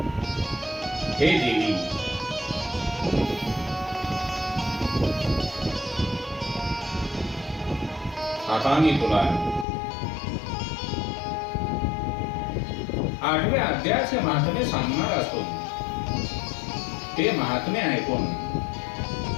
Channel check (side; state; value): right; drops out; at 9.7 s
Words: हे देवी, आता मी तुला 8व्या अध्यायाचे महात्म्य सांगणार असून ते महात्म्य ऐकून